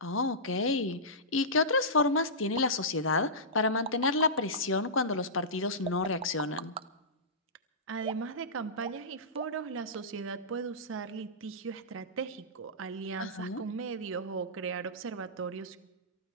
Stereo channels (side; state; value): both; normal; correlation -0.18